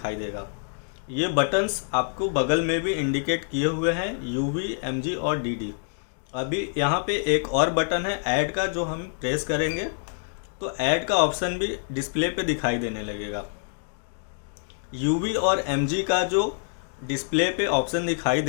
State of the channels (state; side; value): silent; right; digital silence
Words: देगा। ये बटन्स आपको बगल में भी इंडिकेट किए हुए हैं, UV, MG और DD। अभी यहाँ पे एक और बटन है ऐड का, जो हम प्रेस करेंगे तो ऐड का ऑप्शन भी डिस्प्ले पे दिखाई देने लगेगा। UV और MG का जो डिस्प्ले पे ऑप्शन दिखाई